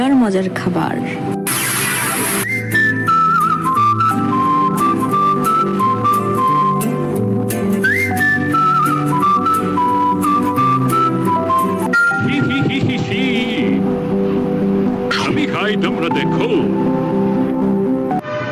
মজার খাবার। আমি খাই, তোমরা দেখো।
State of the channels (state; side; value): identical; both; correlation 1.00